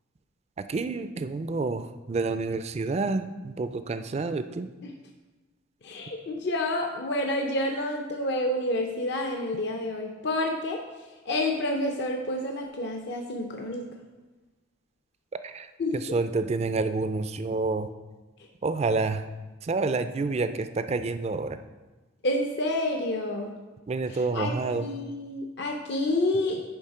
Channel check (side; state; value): both; normal; correlation 0.25